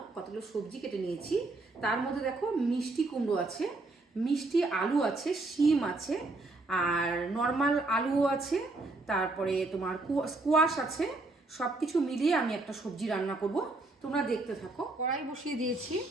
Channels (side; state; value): left; quieter; 3.1 dB